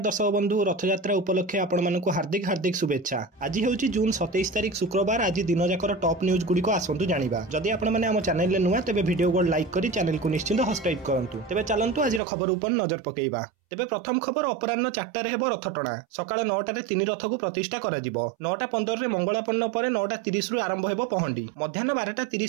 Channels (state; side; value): drops out; left; at 12.2 s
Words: बंधु रथयात्रा उपलक्षे आपण हार्दिक हार्दिक शुभेच्छा। आज हूँ जून 27 तारिख शुक्रवार। आज दिन जाकर टॉप न्यूज गुड़िक आसतु जाना। जदि आपण आम चैनल नुआ तेज वीडियो को लाइक कर चैनल को निश्चिंत सब्सक्राइब करूँ। तेज चलतु आज खबर उपर नजर पकेइबा। तेबे प्रथम खबर अपराह्न 4टार हेब रथटणा। सकाळ 9टारे 3 रथ को प्रतिष्ठा करा जिवो। 9:15 मंगलापन्न पर 9:30 रु आरंभ हेबो पहंडी। मध्याह्न